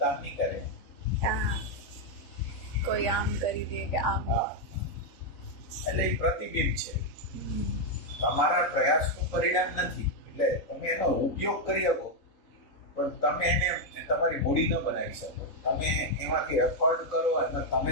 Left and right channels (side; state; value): right; late; 3.9 ms